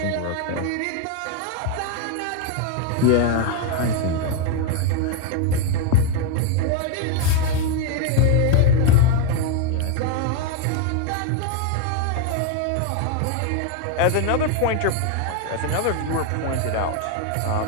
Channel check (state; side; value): different; both; correlation 0.01